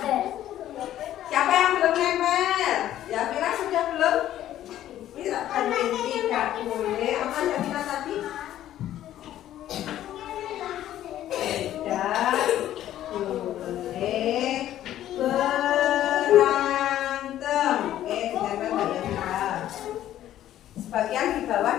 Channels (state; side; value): quieter; right; 12.5 dB